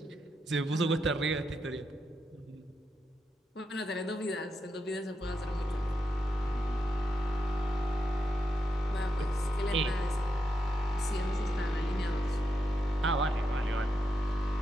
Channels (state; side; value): normal; both; correlation 0.84